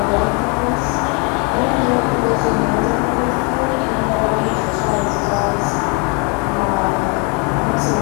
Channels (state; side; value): quieter; right; 33.7 dB